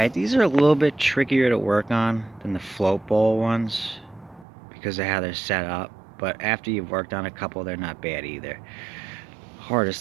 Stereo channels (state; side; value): drops out; left; at 4.5 s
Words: these are a little bit trickier to work on than the float bowl ones because of how they're set up, but after you've worked on a couple, they're not bad either.